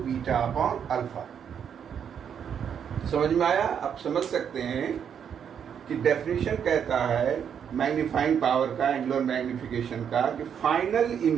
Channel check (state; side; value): quieter; left; 8.0 dB